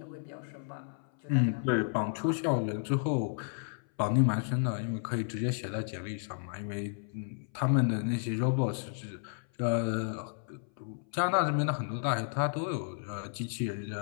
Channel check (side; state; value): right; silent; 56 dB below the other